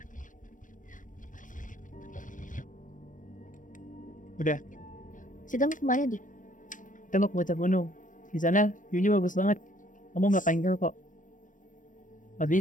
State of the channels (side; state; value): right; late; 0.38 ms